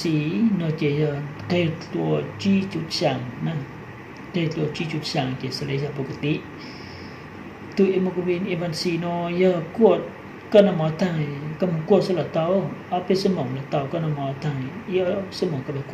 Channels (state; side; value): identical; both; correlation 1.00